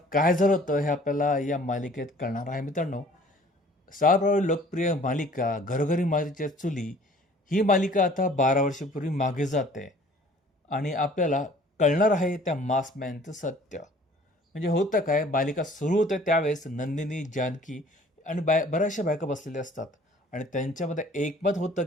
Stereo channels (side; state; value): both; normal; correlation 0.52